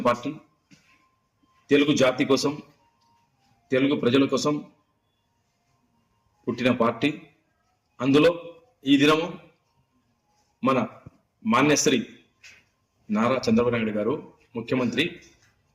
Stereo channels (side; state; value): both; identical; correlation 1.00